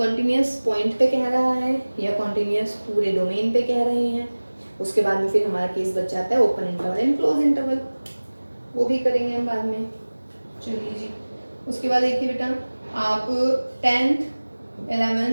पॉइंट पे कह रहा है या कॉन्टिन्यूस पूरे डोमेन पे कह रहे हैं। उसके बाद में फिर हमारा केस बच जाता है open interval and close interval, वो भी करेंगे हम बाद में। चलिए जी, उसके बाद देखिए बेटा आप 10th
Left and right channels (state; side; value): inverted; both; correlation -1.00